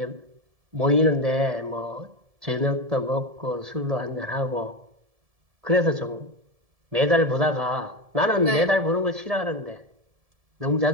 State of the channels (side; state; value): left; late; 1.7 ms